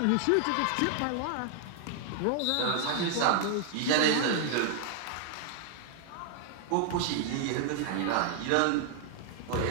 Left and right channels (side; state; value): both; different; correlation 0.00